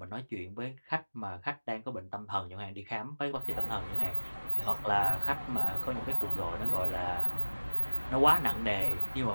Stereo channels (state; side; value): inverted; both; correlation -1.00